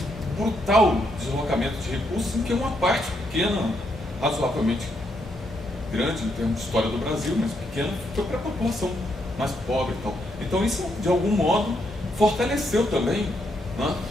brutal deslocamento de recursos, em que uma parte pequena, razoavelmente grande em termos de história do Brasil, mas pequena, foi para a população mais pobre e tal. Então isso, de algum modo, fortaleceu também, né,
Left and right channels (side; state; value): both; normal; correlation 0.77